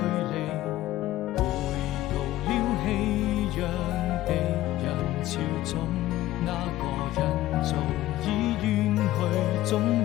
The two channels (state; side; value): quieter; right; 15.2 dB